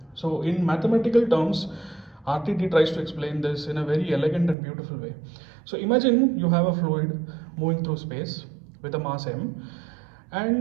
So in mathematical terms, RTT tries to explain this in a very elegant and beautiful way. So imagine you have a fluid moving through space with a mass m,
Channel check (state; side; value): drops out; left; at 4.5 s